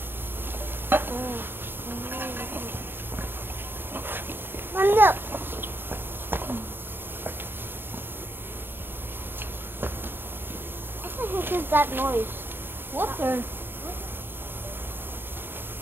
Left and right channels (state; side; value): late; left; 0.099 ms